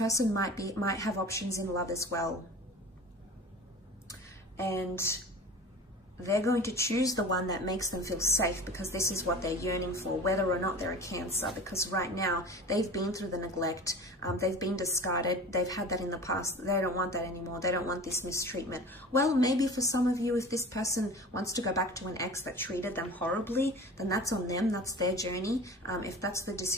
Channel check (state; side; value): normal; both; correlation 0.37